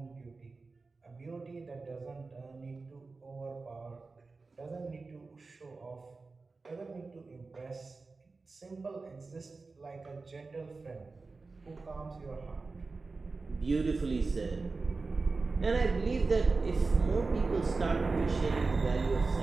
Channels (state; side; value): quieter; left; 3.9 dB